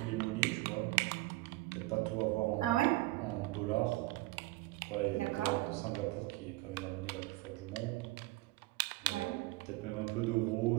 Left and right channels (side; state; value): left; quieter; 19.6 dB